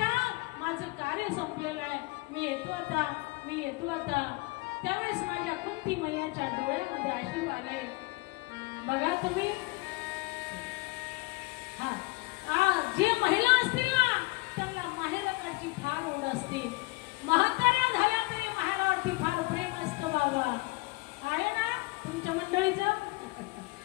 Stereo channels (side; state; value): right; quieter; 23.8 dB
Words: माझं कार्य संपलेलं आहे, मी येतो आता, मी येतो आता. त्यावेळेस माझ्या कुंती मैयाच्या डोळ्यामध्ये अश्रू आले. बघा तुम्ही, जे महिला असतील ना त्यांना माहेरकडची फार ओढ असते. म्हाताऱ्या झाल्या तरी माहेरावरती फार प्रेम असतं. बाबा आहे ना तुमच्या मंडळीचं,